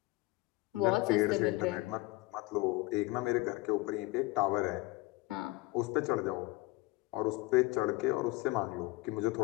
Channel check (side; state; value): right; quieter; 20.8 dB